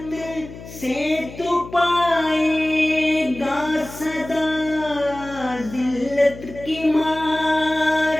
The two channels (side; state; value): left; noise; hum, 15 dB below the sound